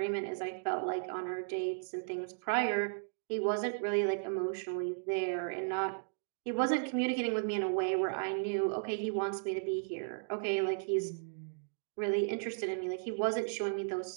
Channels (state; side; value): silent; left; digital silence